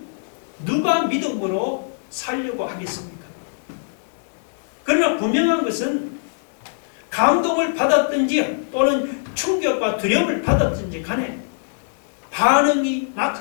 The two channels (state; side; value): silent; right; digital silence